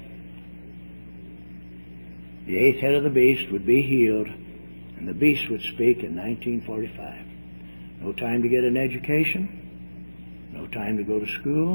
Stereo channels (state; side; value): inverted; both; correlation -1.00